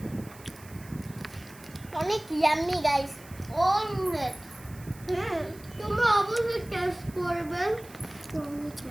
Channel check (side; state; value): right; noise; hiss, 21 dB below the sound